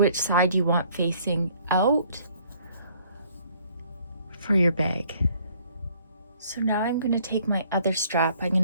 side you want facing out for your bag. So now I'm going to take my other strap. I'm going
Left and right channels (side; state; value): both; inverted; correlation -0.61